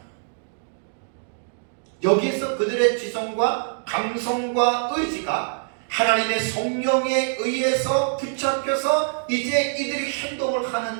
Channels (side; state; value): left; silent; digital silence